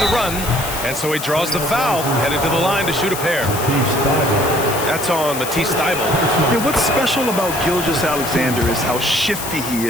run, and so he draws the foul, headed to the line to shoot a pair. That's on Matisse Thibault. Yeah, what's special about Gilgeous-Alexander is how shifty he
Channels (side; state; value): left; noise; hiss, 8 dB below the sound